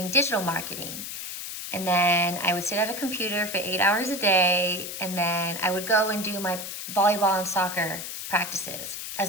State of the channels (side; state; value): left; noise; hiss, 7 dB below the sound